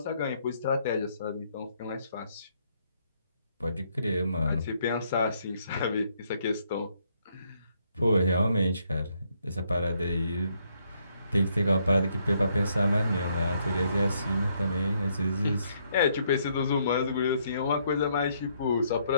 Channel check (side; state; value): both; inverted; correlation -0.72